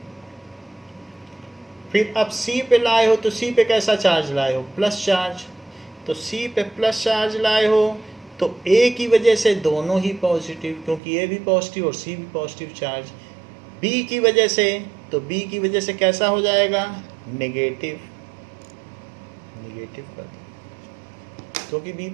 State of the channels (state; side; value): drops out; left; at 11.0 s